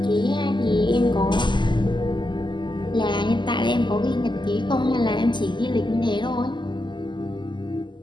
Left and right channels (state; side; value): late; right; 0.22 ms